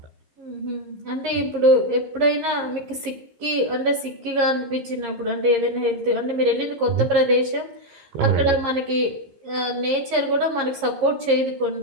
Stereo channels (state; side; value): late; left; 15 ms